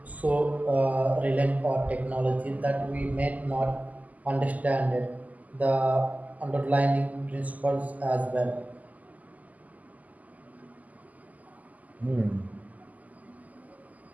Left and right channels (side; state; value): left; late; 0.077 ms